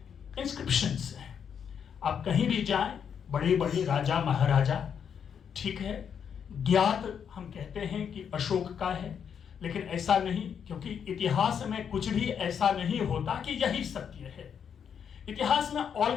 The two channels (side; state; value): right; quieter; 7.7 dB